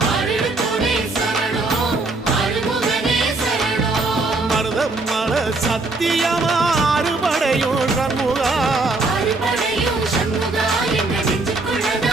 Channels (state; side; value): quieter; left; 3.3 dB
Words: மருதம் மல சத்தியமா அறுபடையும் சண்முகா